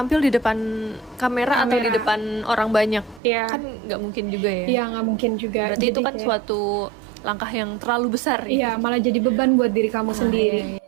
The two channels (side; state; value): left; drops out; at 3.2 s